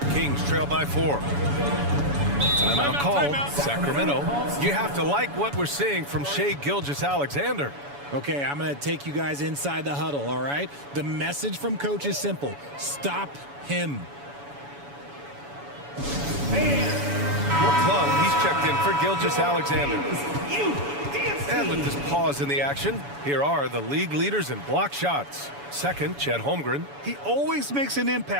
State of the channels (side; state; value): left; late; 7.1 ms